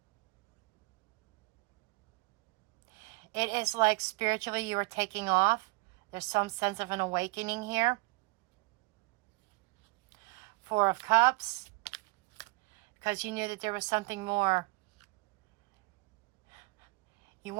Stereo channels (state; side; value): quieter; left; 28.1 dB